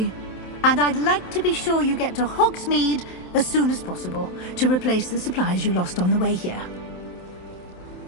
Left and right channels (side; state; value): right; late; 27 ms